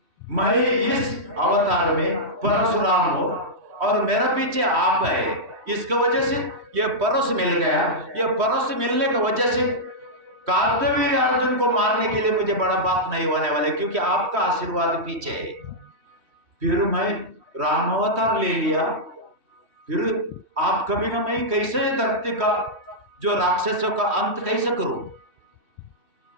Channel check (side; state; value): left; late; 3.1 ms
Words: मैं इस अवतार में परशुराम हूं और मेरा पीछे आप है, इसका वजह से ये परश मिल गया। ये परश मिलने की वजह से कार्तवीर अर्जुन को मारने के लिए मुझे बड़ा बात नहीं होने वाले, क्योंकि आपका आशीर्वाद पीछे है। फिर मैं राम अवतार ले लिया, फिर आप कभी ना मैं कैसे धरती का जो राक्षसों का अंत कैसे करूं?